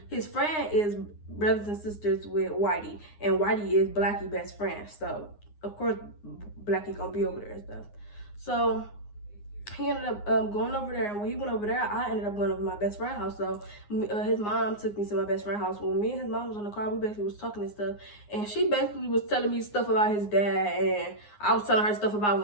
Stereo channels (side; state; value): right; late; 9.7 ms